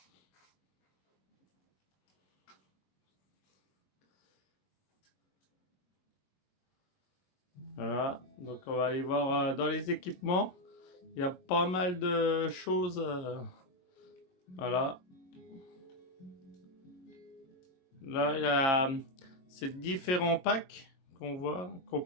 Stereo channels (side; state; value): right; late; 22 ms